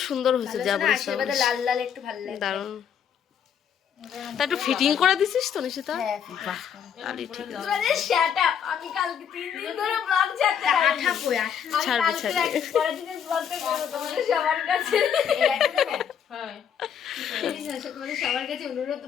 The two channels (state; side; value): quieter; right; 8.2 dB